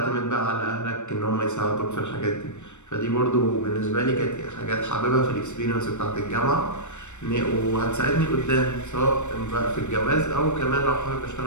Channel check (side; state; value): right; late; 0.84 ms